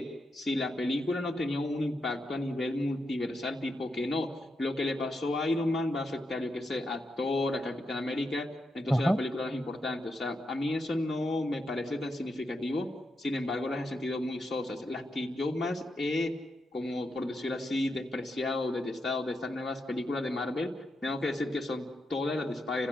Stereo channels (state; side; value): normal; both; correlation 0.84